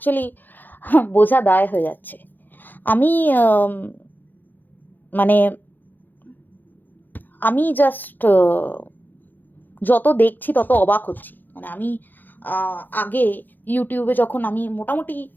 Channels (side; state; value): right; late; 0.088 ms